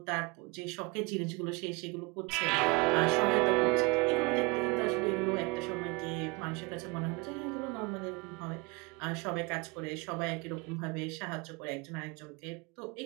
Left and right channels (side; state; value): left; quieter; 27.8 dB